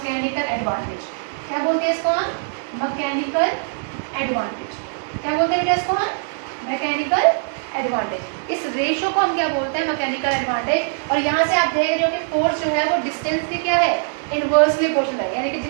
advantage. क्या बोलते हैं इसको हम, मैकेनिकल एडवांटेज। क्या बोलते हैं बेटा इसको हम, मैकेनिकल एडवांटेज। इस रेशो को हम क्या बोलते हैं, मैकेनिकल एडवांटेज। और यहाँ से आप देख रहे हो कि फोर्स जो है वो डिस्टेंस की क्या है, इनवर्सली प्रोपोर्शनल है, यानी कि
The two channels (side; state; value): left; silent; digital silence